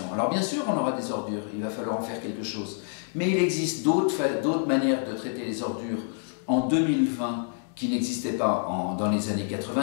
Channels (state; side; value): silent; right; digital silence